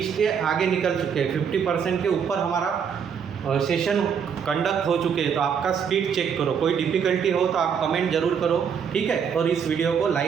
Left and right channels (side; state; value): left; quieter; 7.2 dB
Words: के आगे निकल चुके हैं, 50% के ऊपर हमारा सेशन कंडक्ट हो चुके हैं। तो आपका स्पीड चेक करो, कोई डिफ़िकल्टी हो तो आप कमेंट जरूर करो, ठीक है। और इस वीडियो को